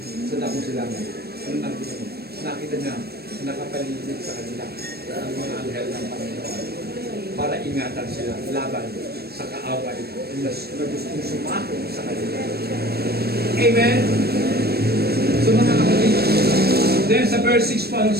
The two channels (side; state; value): left; late; 0.46 ms